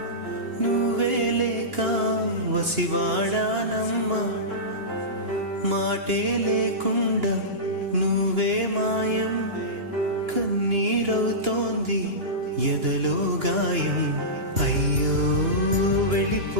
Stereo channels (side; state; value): left; late; 2.9 ms